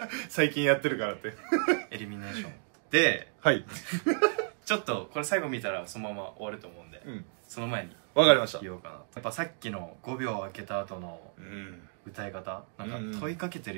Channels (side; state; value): left; silent; 57 dB below the other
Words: 最近やってるからってエリミネーションで、はいちょっとこれ最後見たらそのまま終わると思うんで、うんその前にわかりました。言おうかな。やっぱさっきの5秒空けた後のうん歌い方、なんか問いかけて